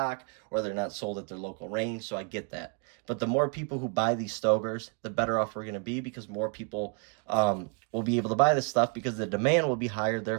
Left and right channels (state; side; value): quieter; left; 37.4 dB